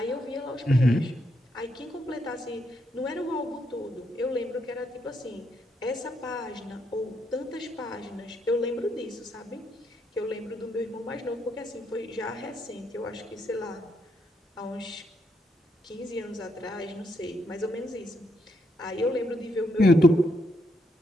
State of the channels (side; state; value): both; normal; correlation 0.77